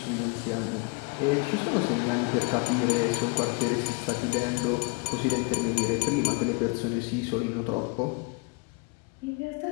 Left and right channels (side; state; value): right; quieter; 31.4 dB